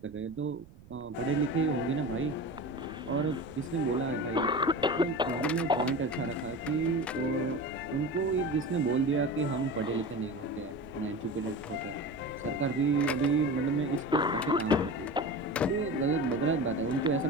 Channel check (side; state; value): right; noise; rumble, 21 dB below the sound